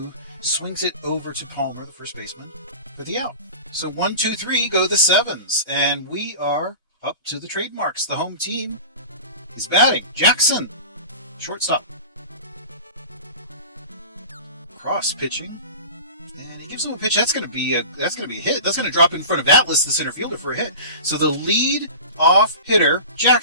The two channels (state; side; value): inverted; both; correlation -0.35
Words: swings it over to Palmer, the first baseman, for the out. So 1-2-3 go the Sevens. And we are up to the Trademarks. The home team is batting. Jackson, shortstop. Cross pitching, and he gives him a pitch. That's going to be a hit. That's going to drop in front of Atlas, the center fielder, for a hit. So the lead off hitter,